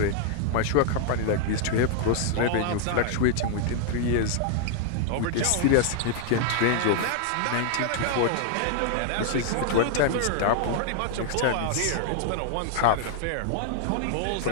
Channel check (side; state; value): both; different; correlation 0.00